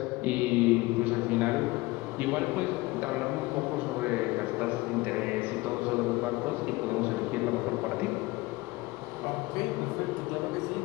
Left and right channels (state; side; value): quieter; right; 21.2 dB